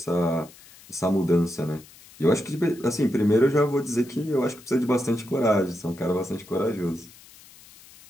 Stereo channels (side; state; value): left; noise; hiss, 23 dB below the sound